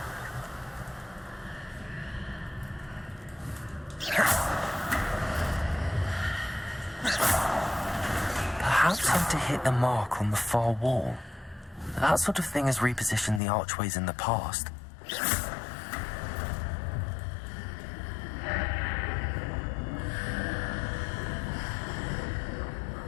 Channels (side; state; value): right; drops out; at 13.4 s